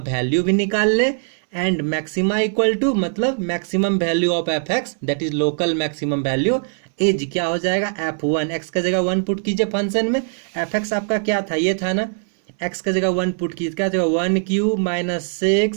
भी निकाल ले, एंड मैक्सिमा इक्वल टू, मतलब maximum value of f(x), that is local maximum value, is क्या हो जाएगा? f1। x का जगह 1 पुट कीजिए फंक्शन में। f(x) आपका क्या था? ये था ना। x का जगह 1 पुट कीजिए, क्या जगह 1³ -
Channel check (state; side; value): silent; left; digital silence